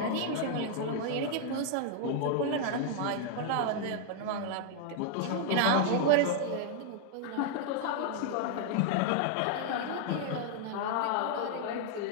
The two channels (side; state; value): both; different; correlation 0.00